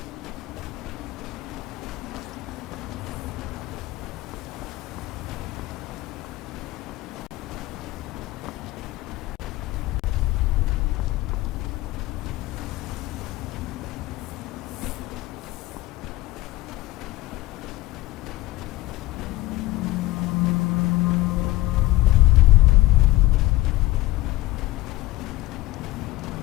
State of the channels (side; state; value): right; quieter; 18.1 dB